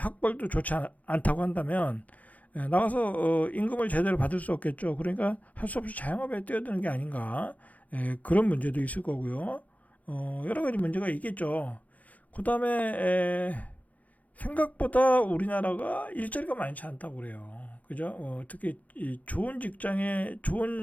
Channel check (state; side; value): late; right; 0.074 ms